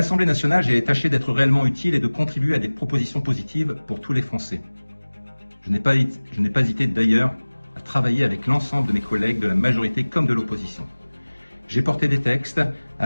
nationale, j'ai tâché d'être réellement utile et de contribuer à des propositions positives pour tous les Français. Je n'ai pas hésité d'ailleurs à travailler avec l'ensemble de mes collègues de la majorité comme de l'opposition. J'ai porté des textes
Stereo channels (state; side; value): inverted; both; correlation -1.00